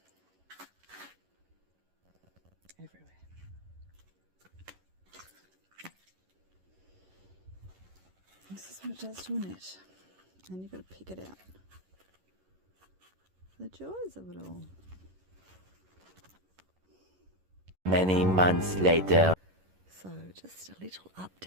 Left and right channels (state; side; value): late; left; 11 ms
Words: Everywhere. This is what it does to a net. And you've got to pick it out. The joys of it all. Many months later. So just a little